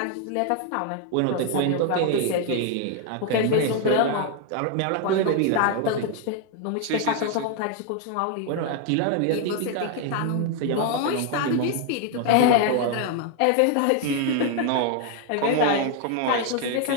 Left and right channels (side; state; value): both; different; correlation 0.00